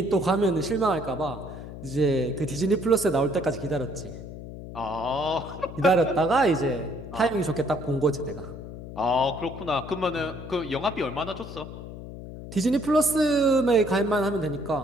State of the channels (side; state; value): left; noise; hum, 12 dB below the sound